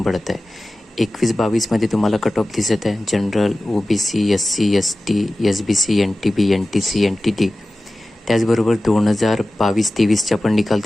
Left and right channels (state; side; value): normal; both; correlation 0.96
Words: पडत आहे. 21-22मध्ये तुम्हाला कट ऑफ दिसत आहे. General, OBC, SC, ST, SBC, NTB, NTC, NTD. त्याचबरोबर 2022-23चा पण निकाल